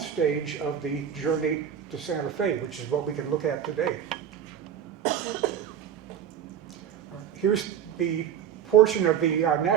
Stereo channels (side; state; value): left; quieter; 9.0 dB